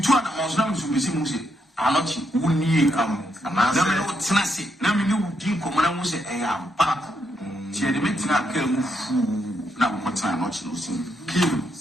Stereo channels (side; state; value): both; normal; correlation 0.79